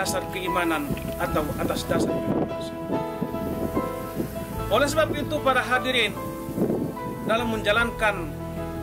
keimanan atau atas dasar keikhlasan. Oleh sebab itu para hadirin, dalam menjalankan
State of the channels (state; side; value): identical; both; correlation 1.00